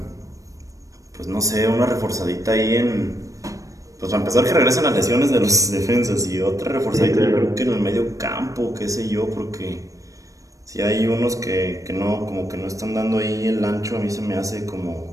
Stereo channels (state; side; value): late; left; 0.16 ms